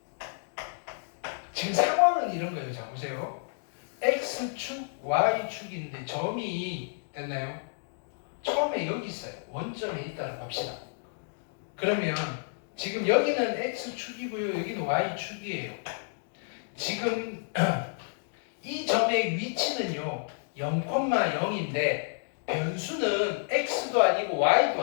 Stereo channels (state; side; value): silent; right; digital silence